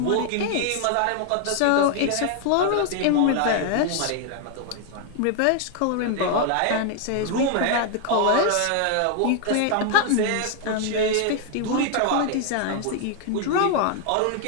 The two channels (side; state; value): both; different; correlation 0.00